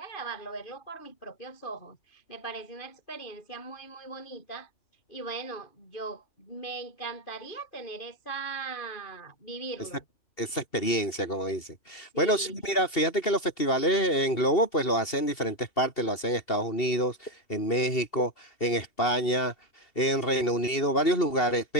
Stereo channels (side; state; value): right; late; 2.7 ms